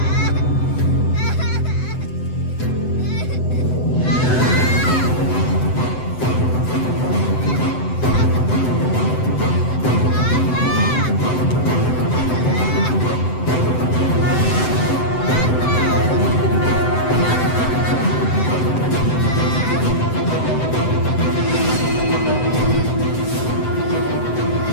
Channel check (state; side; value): late; right; 7.9 ms